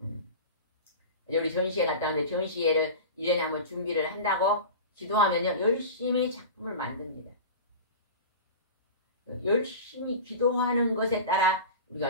우리 전시회 갔다 왔는데 전시회를 1년에 한번 준비를 한다고 기도하면요 열심히 작품을 만듭니다. 열심히 기도하는 것에 따라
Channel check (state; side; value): inverted; both; correlation -0.31